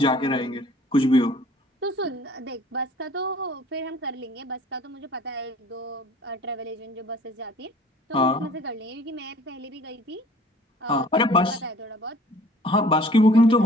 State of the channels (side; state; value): both; normal; correlation 0.51